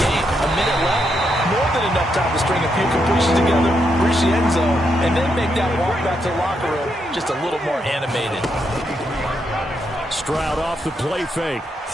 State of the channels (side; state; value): both; normal; correlation 0.80